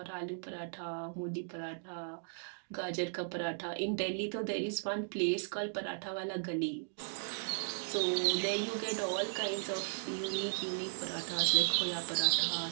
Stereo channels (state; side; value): silent; left; digital silence